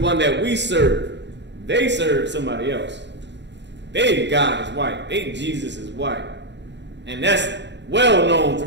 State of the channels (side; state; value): left; late; 0.52 ms